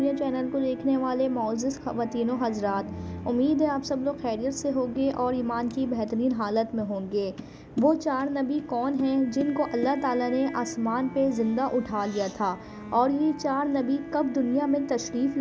चैनल को देखने वाले मोअज़्ज़िज़ ख़वातीन व हज़रात, उम्मीद है आप सब लोग खैरियत से होंगे और ईमान की बेहतरीन हालत में होंगे। वो 4 नबी कौन हैं जिनको अल्लाह ताला ने आसमान पे ज़िंदा उठा लिया था, और ये 4 नबी कब दुनिया में तशरीफ़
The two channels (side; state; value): both; identical; correlation 1.00